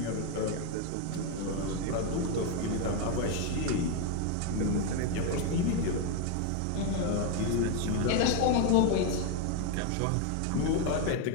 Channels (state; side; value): different; both; correlation 0.01